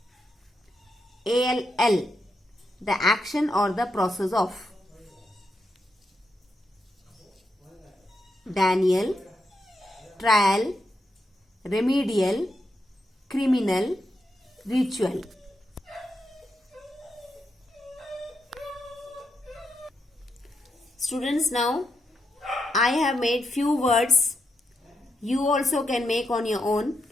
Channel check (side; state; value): both; normal; correlation 0.83